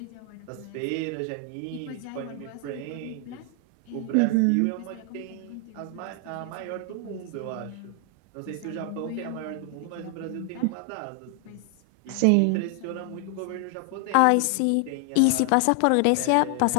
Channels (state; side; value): different; both; correlation 0.00